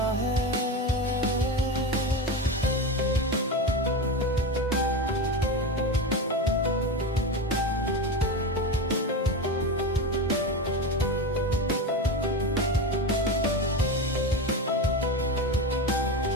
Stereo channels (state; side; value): normal; both; correlation 0.21